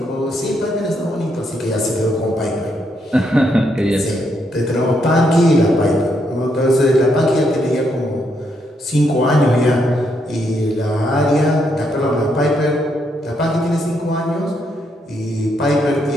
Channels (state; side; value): normal; both; correlation 0.77